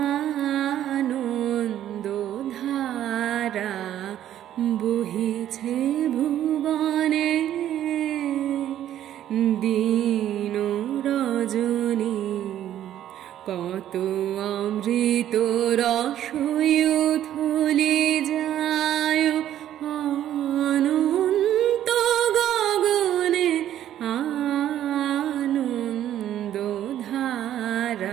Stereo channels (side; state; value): left; quieter; 11.6 dB